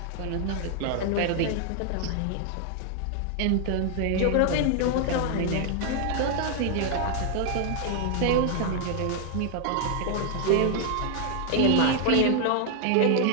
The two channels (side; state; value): both; different; correlation 0.00